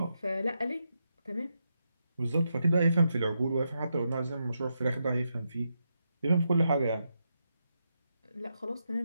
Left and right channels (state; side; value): inverted; both; correlation -0.84